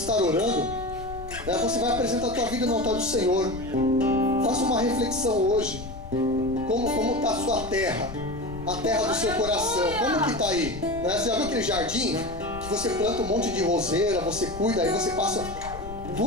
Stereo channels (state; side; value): noise; left; rumble, 12 dB below the sound